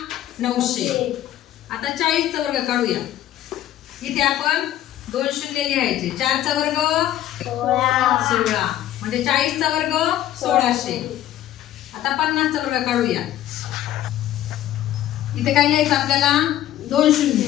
900। आता 40 चा वर्ग काढूया। इथे आपण 2 शून्य लिहायचे। 4 चा वर्ग 16 म्हणजे 40 चा वर्ग 1600। आता 50 चा वर्ग काढूया। इथे काय लिहायचं आपल्याला? 2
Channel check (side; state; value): right; quieter; 12.9 dB